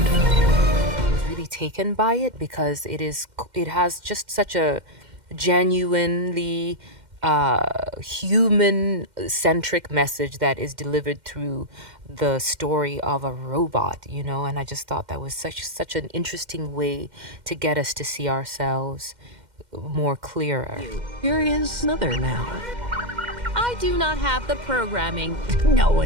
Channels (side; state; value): left; late; 2.1 ms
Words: Taken by it because it has just such a genuinely human-centric message that is delivered through the story of a robot, you know, and I just thought that was such an interesting way to get us to see ourselves more clearer. Here is Mother now. I do not have the programming. No